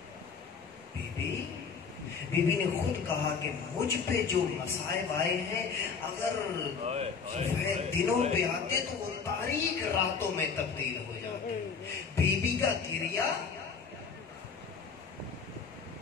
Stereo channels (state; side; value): quieter; right; 5.6 dB